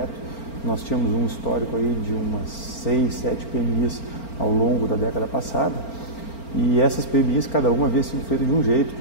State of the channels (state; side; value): late; right; 4.4 ms